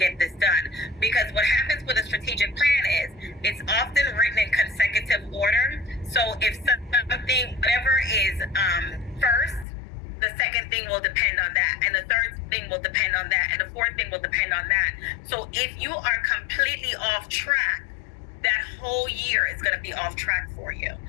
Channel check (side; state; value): right; drops out; at 9.7 s